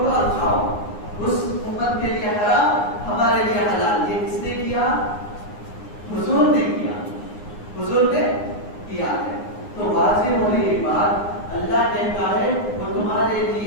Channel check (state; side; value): late; right; 9.7 ms